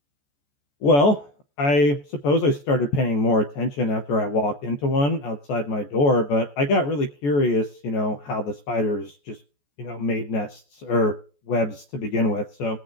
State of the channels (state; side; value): late; right; 14 ms